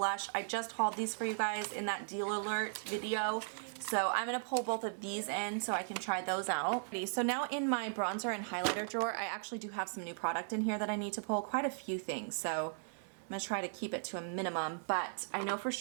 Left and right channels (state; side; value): silent; left; digital silence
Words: I just hauled these for you guys in that deal alert video. So I'm going to pull both of these in so I can try those out. So now in my bronzer and highlighter drawer, I actually do have some new product in here that I need to pull. Quite a few things. So I'm going to try to keep it to a minimum, but I know for